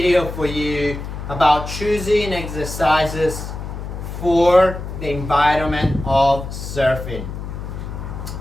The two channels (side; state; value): left; noise; hum, 8 dB below the sound